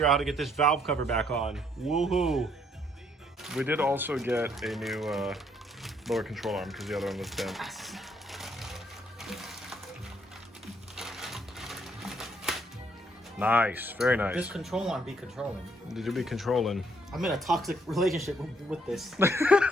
out how to get this valve cover back on. Woohoo! We did also get a new lower control arm because the other one was bent. Nice, very nice. This control arm be controlling. Did you be controlling? I'm in a toxic relationship with this.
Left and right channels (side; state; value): both; normal; correlation 0.69